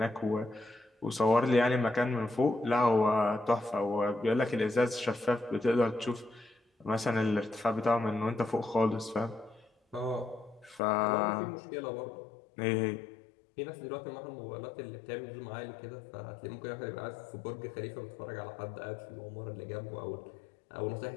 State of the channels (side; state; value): right; drops out; at 10.8 s